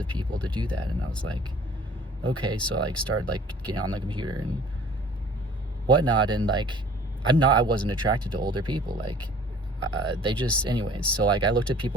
people to do that. And I was like, okay. So I started getting on the computer and whatnot, and I wasn't attracted to older people. They just, anyways, so I looked at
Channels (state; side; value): normal; both; correlation 0.51